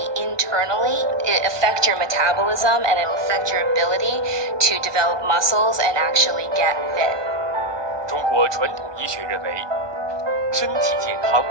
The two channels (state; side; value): late; left; 1.2 ms